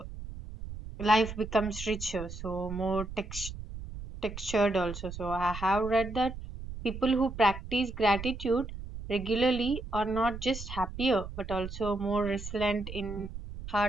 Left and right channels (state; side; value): noise; right; rumble, 10 dB below the sound